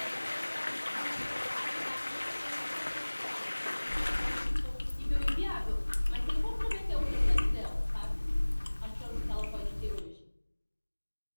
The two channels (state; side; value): inverted; both; correlation -1.00